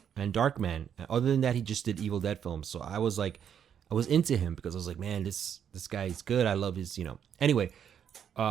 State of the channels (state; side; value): quieter; left; 8.5 dB